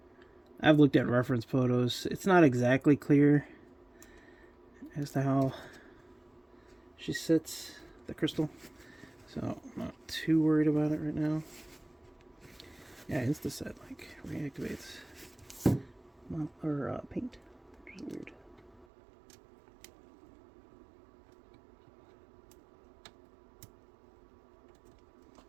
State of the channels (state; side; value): drops out; left; at 18.9 s